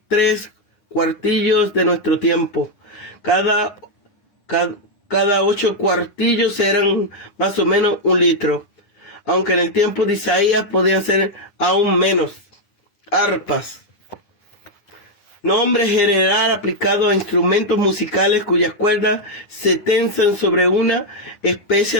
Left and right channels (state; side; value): late; right; 9.9 ms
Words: cuartillos de nuestro tiempo. Cada 8 cuartillos eran más o menos 1 litro, aunque en el tiempo de Isaías podían ser aún menos. Arpas, nombre general aplicado a instrumentos musicales cuyas cuerdas se tensan sobre una